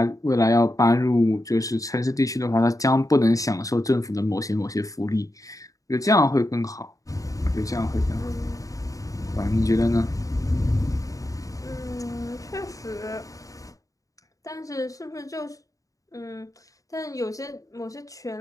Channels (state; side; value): late; right; 0.16 ms